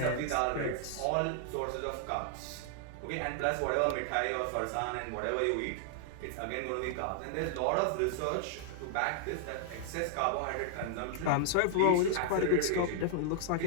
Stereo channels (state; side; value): different; both; correlation 0.00